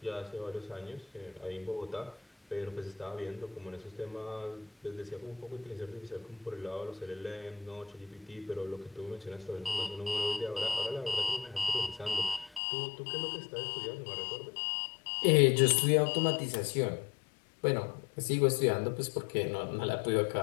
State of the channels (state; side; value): drops out; right; at 12.6 s